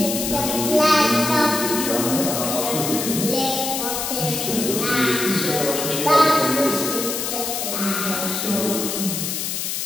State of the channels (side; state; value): left; noise; hiss, 3 dB below the sound